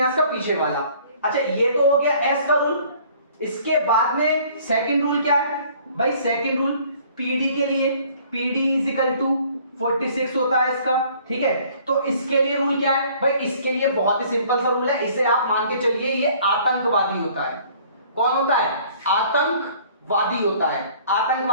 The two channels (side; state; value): both; inverted; correlation -0.55